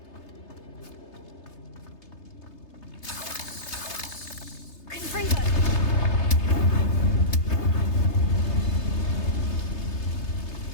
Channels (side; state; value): right; late; 3.3 ms